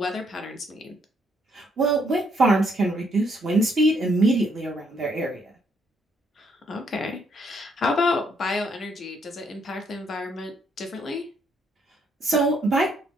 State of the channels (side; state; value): both; normal; correlation 0.71